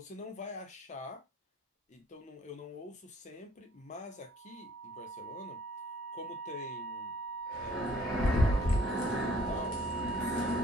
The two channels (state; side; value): normal; both; correlation 0.57